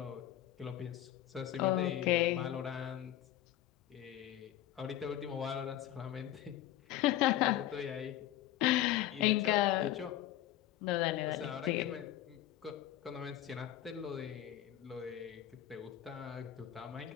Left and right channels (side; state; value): right; quieter; 12.9 dB